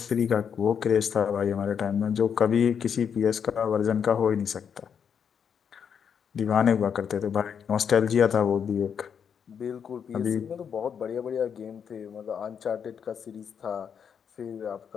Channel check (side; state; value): right; quieter; 7.4 dB